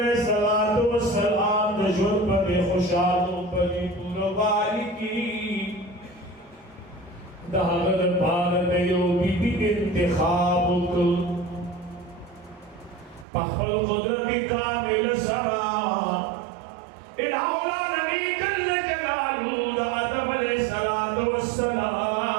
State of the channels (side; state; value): left; drops out; at 13.2 s